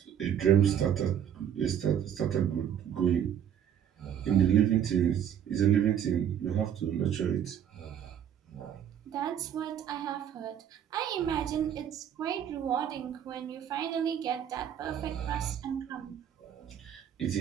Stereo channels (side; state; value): left; quieter; 9.3 dB